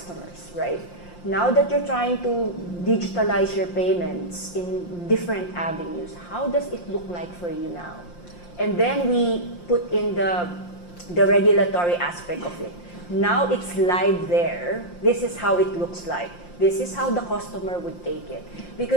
right? Now that you're trying to digitalize your payments in different avenues, how does it look like for you now? And then we put in the regulatory aspect of it. Now it's live there. This is how it looks like. This is how the customer would take it.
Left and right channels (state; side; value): late; right; 5.7 ms